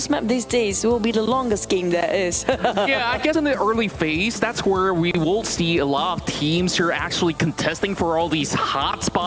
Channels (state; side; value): identical; both; correlation 1.00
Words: map these days will be the longest game there is. Yeah, I guess in the early phase, that's where we will see a lot of teams who are actually contesting for all these hot